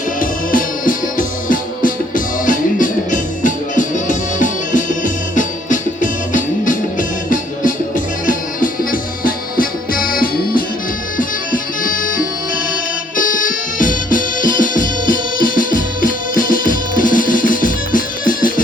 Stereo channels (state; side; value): normal; both; correlation 0.64